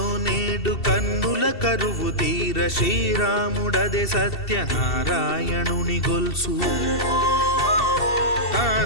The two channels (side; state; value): right; late; 2.7 ms